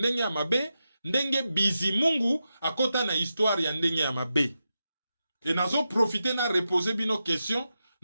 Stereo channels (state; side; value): inverted; both; correlation -0.89